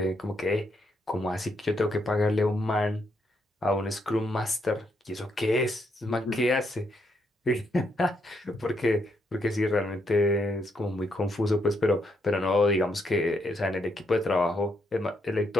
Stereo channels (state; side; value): normal; both; correlation 0.76